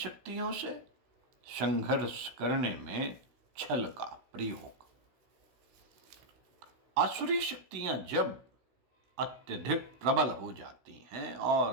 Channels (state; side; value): late; left; 16 ms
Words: से संघर्ष करने में छल का प्रयोग। आसुरी शक्तियां जब अत्यधिक प्रबल हो जाती हैं